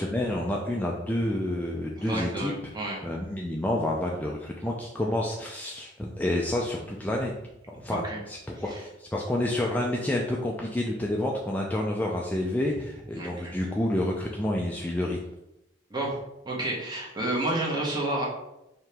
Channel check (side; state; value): both; normal; correlation 0.65